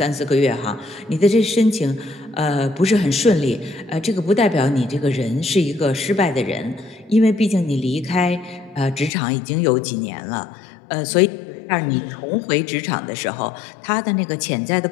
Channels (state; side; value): drops out; right; at 9.1 s